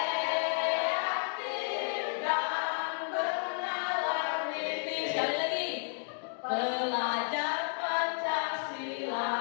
dan bernalar niti. Sekali lagi, belajar Pancasila,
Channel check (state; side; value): silent; right; 56 dB below the other